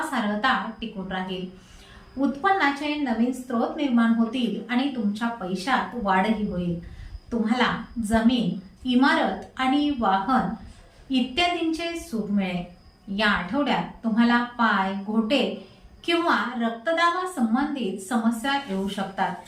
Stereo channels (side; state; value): both; identical; correlation 1.00